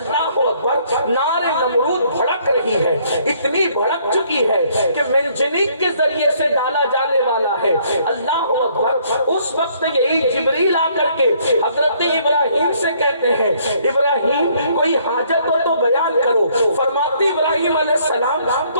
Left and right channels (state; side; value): inverted; both; correlation -0.65